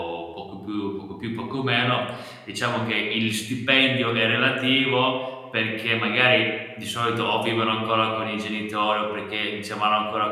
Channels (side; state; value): both; identical; correlation 1.00